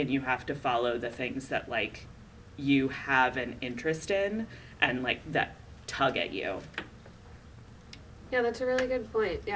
you have to follow the things that like you have an interest in and like that tug at you. Yeah, that's a really good point.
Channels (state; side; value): identical; both; correlation 1.00